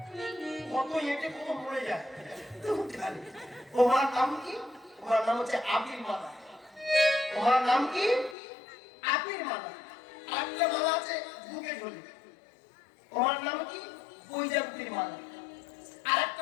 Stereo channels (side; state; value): right; drops out; at 8.3 s